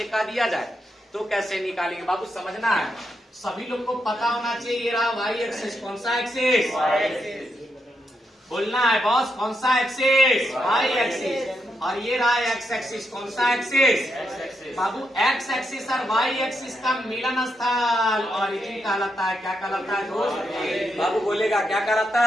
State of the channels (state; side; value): normal; both; correlation 0.82